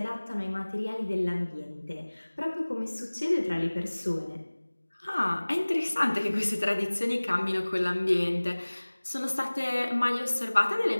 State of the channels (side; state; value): both; inverted; correlation -1.00